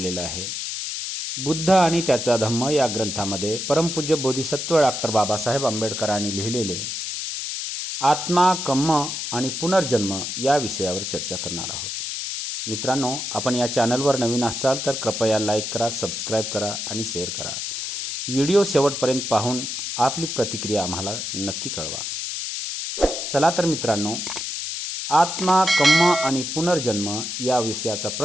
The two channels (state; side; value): noise; left; hiss, 4 dB below the sound